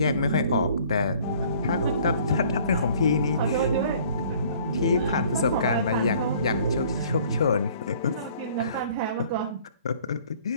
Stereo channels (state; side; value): inverted; both; correlation -0.55